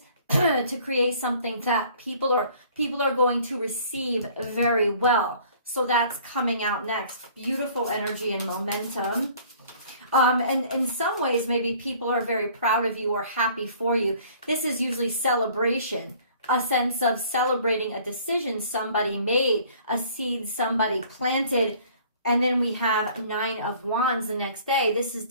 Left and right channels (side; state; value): both; inverted; correlation -0.53